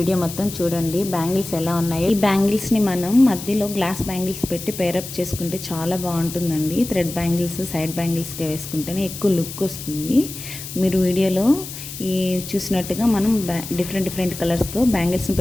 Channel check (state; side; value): noise; left; hiss, 10 dB below the sound